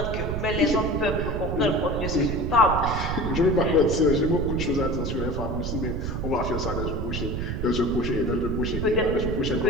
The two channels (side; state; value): right; noise; rumble, 3 dB below the sound